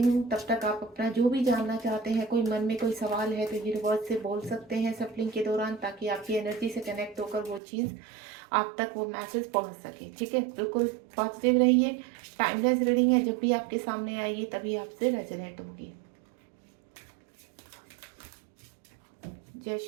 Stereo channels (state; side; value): drops out; left; at 7.6 s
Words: तब तक आप अपना जो भी जानना चाहते हैं, कोई मन में कोई सवाल है तो यूनिवर्स से बोल सकते हैं सप्लिंग के दौरान, ताकि आपकी एनर्जी से कनेक्ट होकर वो चीज़ आप तक वो मैसेज पहुँच सके। ठीक है, बिल्कुल पॉजिटिव रहिए। टाइमलेस रीडिंग है, जब भी आपके सामने आएगी तभी आपसे रेजोनेट होगी। जय